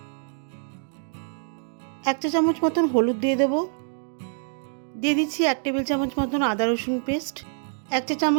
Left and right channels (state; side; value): silent; left; 61 dB below the other